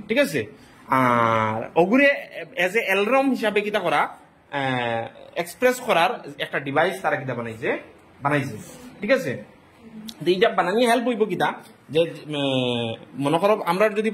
ঠিক আছে আর ওগুরে এজ এ অ্যালার্ম হিসাবে কিটা করা এক্সপ্রেস করার একটা ডিভাইস তারা কিটা বানাইছে ঠিক আছে এইটা বানানি হেল্প হইব কিটা যে মনে করো আমরা যদি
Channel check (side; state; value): both; identical; correlation 1.00